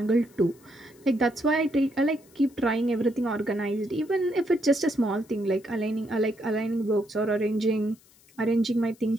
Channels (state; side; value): noise; left; hiss, 29 dB below the sound